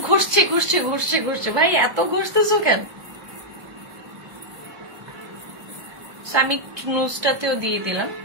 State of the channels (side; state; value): left; late; 1.2 ms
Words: ঘষছে ঘষছে ঘষছে ঘষছে, ভাই এত ঘষতেছো কেন? আমি নুজটাতেও দিয়ে দিলাম,